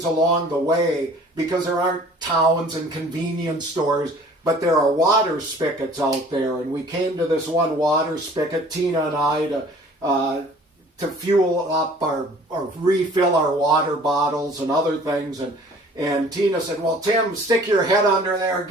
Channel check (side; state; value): both; normal; correlation 0.51